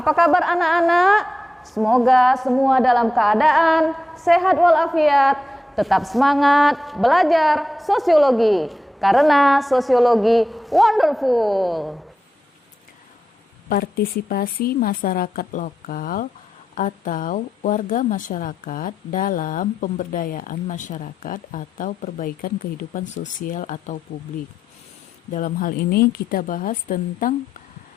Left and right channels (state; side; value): normal; both; correlation 0.89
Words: kabar anak-anak? Semoga semua dalam keadaan sehat walafiat, tetap semangat belajar sosiologi. Karena sosiologi wonderful. Partisipasi masyarakat lokal atau warga masyarakat dalam pemberdayaan masyarakat atau perbaikan kehidupan sosial atau publik. Dalam hal ini kita bahas tentang